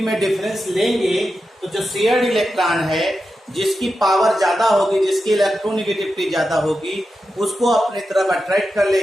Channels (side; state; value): both; normal; correlation 0.90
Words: डिफरेंस लेंगे तो जो शेयर्ड इलेक्ट्रॉन है, जिसकी पावर ज्यादा होगी, जिसकी इलेक्ट्रोनेगेटिविटी ज्यादा होगी, उसको अपनी तरफ अट्रैक्ट कर